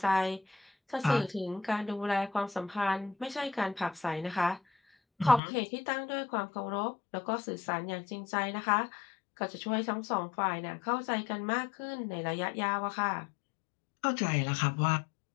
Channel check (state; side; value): drops out; right; at 5.4 s